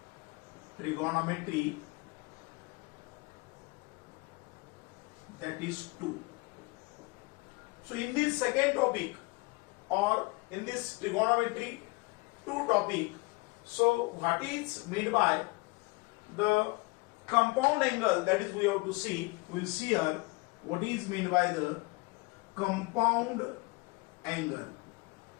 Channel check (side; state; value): right; quieter; 26.2 dB